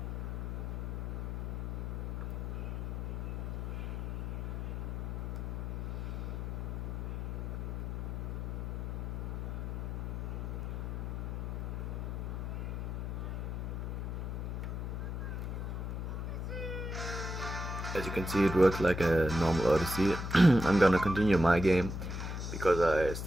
As you can see, it works like a normal Odyssey. I'm gonna continue my game because I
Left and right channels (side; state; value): left; noise; hum, 3 dB below the sound